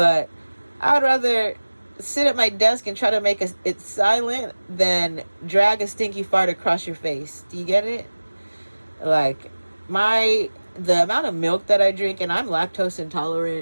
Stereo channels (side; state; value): both; inverted; correlation -1.00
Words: I'd rather sit at my desk and try to make it silent than drag a stinky fart across your face. Do you get it? Like, the amount of milk that I drink, and I'm lactose